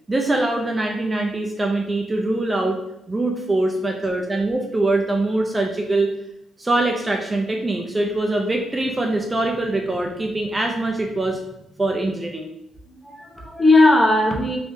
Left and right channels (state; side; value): normal; both; correlation 0.86